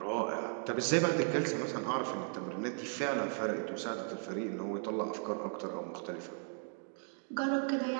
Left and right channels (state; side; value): silent; left; 54 dB below the other